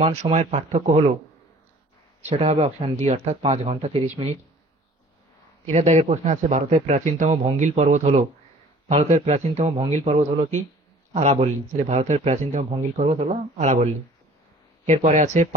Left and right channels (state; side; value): normal; both; correlation 0.50